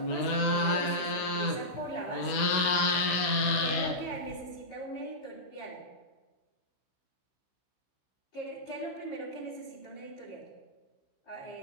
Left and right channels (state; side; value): late; right; 15 ms